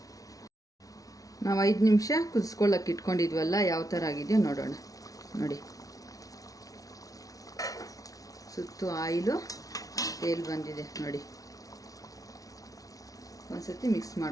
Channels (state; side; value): late; right; 0.17 ms